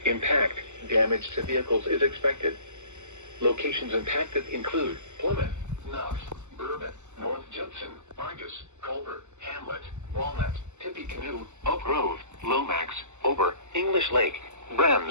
Impact, damage to vehicles is expected. Locations impacted include Plymouth, Knox, Bourbon, North Judson, Argus, Culver, Hamlet, Walnut, Tippecanoe, Oak Grove, Lomax, Ober, English Lake,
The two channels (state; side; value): late; left; 0.83 ms